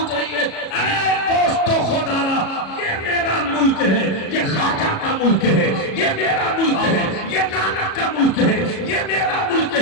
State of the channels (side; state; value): right; late; 37 ms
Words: रही है। अरे दोस्तों खुदारा, ये मेरा मुल्क है, ये खाजा का मुल्क है, ये मेरा मुल्क है, ये नानक का मुल्क है, ये मेरा मुल्क